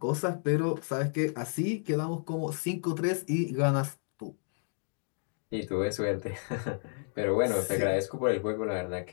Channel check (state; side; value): silent; right; 57 dB below the other